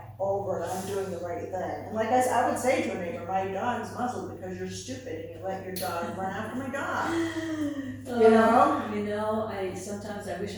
over it. I'm doing the right thing. And like I would say to a neighbor, my dog's muzzled because you're stupid and you let your dog run after my dog. You know? You know, sometimes I wish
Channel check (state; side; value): identical; both; correlation 1.00